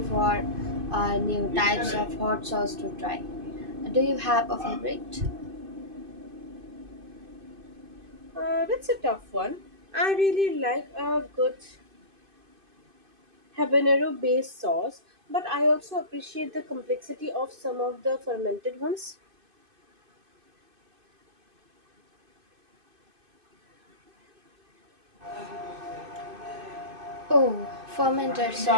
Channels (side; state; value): left; late; 2.5 ms